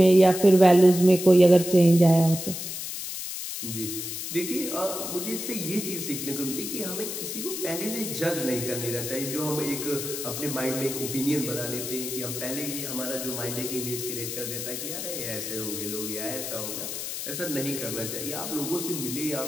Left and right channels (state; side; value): noise; left; hiss, 6 dB below the sound